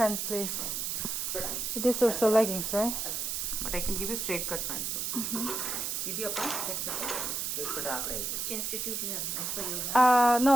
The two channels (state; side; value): noise; right; hiss, 2 dB below the sound